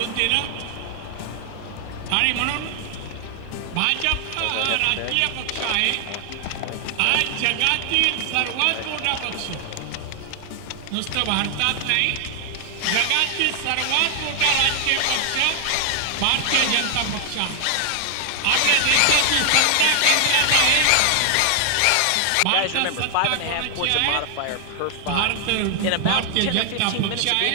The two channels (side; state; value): both; different; correlation 0.00